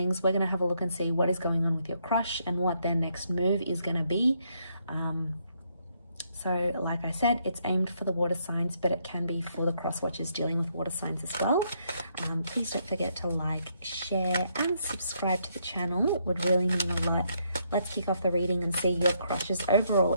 We're going to have a look and see what is going on with your crush and what their next move is going to be. So like I said, it's aimed for the water signs, but it can be for the cross watchers dealing with water signs as well. Please don't forget to like, share and subscribe to the channel. It would really mean a lot. Let's kick off the reading and see your crush's overall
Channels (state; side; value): inverted; both; correlation -0.74